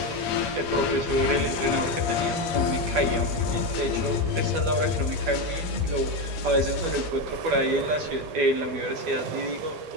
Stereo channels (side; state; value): left; late; 12 ms